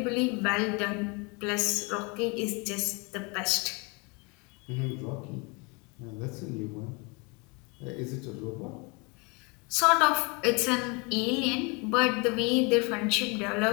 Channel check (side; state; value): right; quieter; 30.0 dB